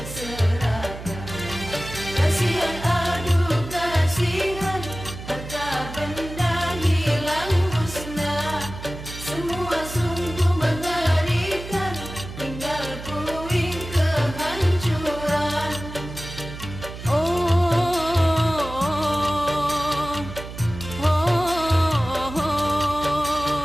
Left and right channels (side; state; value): right; noise; hum, 11 dB below the sound